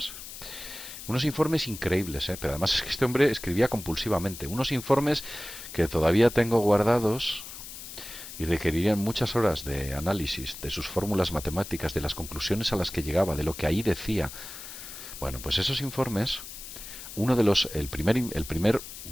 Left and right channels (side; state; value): left; noise; hiss, 12 dB below the sound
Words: Unos informes increíbles, pero además es que este hombre escribía compulsivamente. Unos informes que todavía tengo guardados, y requerirían muchas horas de análisis de sus fórmulas matemáticas, de las conclusiones a las que llegaba, de lo que ahí decía. Bueno, pues esos informes, el primer